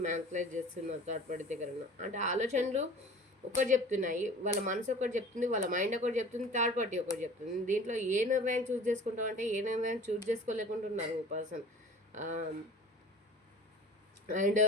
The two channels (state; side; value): normal; both; correlation 0.43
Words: మ్యానిపులేట్ చేస్తున్నారు. థర్డ్ పార్టీ దగ్గర ఉన్న అంటే ఆలోచనలు ఒకటి చెప్తున్నాయి, వాళ్ళ మనసు ఒకటి చెప్తుంది, వాళ్ళ మైండ్ ఒకటి చెప్తుంది, థర్డ్ పార్టీ ఒకటి చెప్తుంది. దీంట్లో ఏ నిర్ణయం చూస్ చేసుకుంటాం అంటే ఏ నిర్ణయం చూస్ చేసుకోలేకుంటున్నారు పర్సన్. అండ్